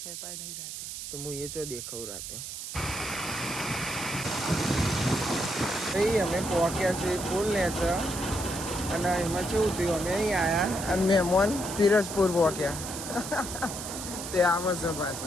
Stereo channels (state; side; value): noise; right; hiss, 8 dB below the sound